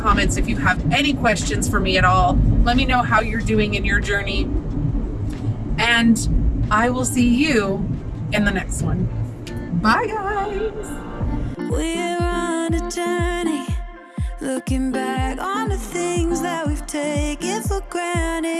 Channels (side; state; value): both; identical; correlation 1.00